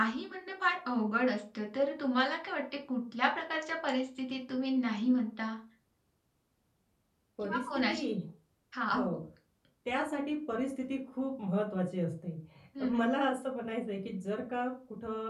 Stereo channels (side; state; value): both; identical; correlation 1.00